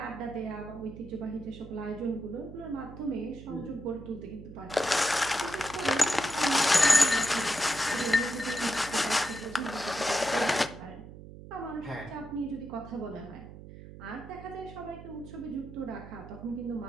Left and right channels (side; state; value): right; noise; hum, 15 dB below the sound